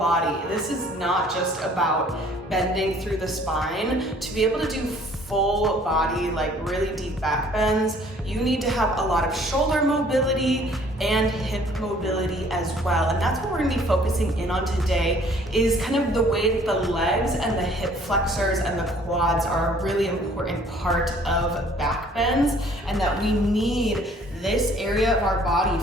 This is not just about bending through the spine. To be able to do full body, like really deep back bends, you need to have a lot of shoulder mobility and hip mobility as well. And that's what we're gonna be focusing in on today, is kind of the way that the legs and the hip flexors and the quads are a really important part of back bends, and that we need this area of our body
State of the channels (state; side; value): normal; both; correlation 0.57